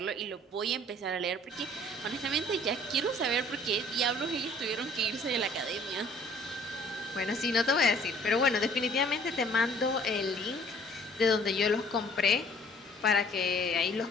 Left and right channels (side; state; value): both; normal; correlation 0.55